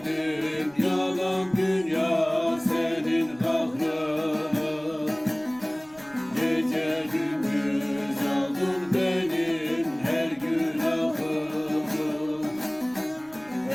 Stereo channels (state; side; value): noise; right; rumble, 26 dB below the sound